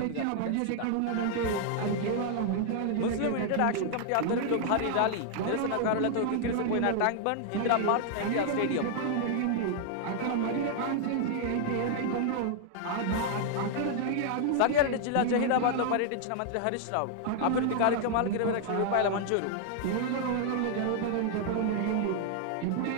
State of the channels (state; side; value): different; both; correlation 0.00